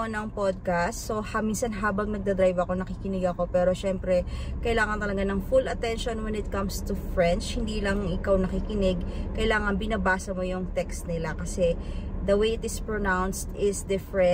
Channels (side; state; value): both; identical; correlation 1.00